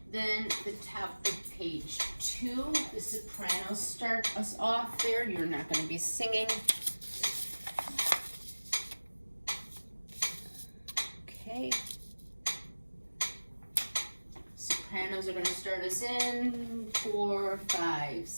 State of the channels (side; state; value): both; inverted; correlation -1.00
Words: Then the top of page 2, the sopranos start us off there. You're not going to be singing. Okay. Sopranos are going to start us in 4, 5,